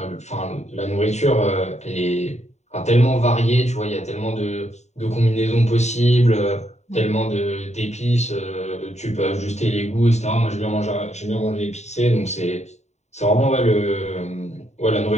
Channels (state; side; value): late; right; 0.33 ms